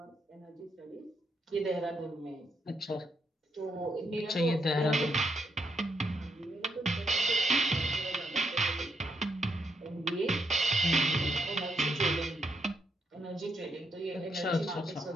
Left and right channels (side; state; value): both; normal; correlation 0.78